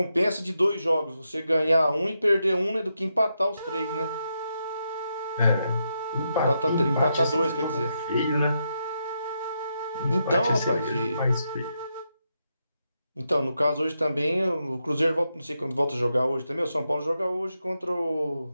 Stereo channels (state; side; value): inverted; both; correlation -0.83